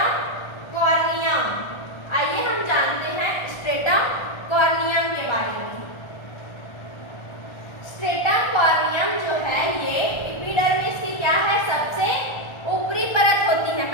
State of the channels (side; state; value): right; late; 1.4 ms